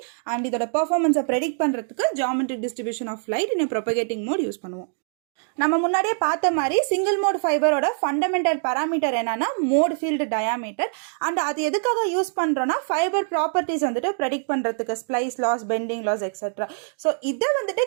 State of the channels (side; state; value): left; silent; 63 dB below the other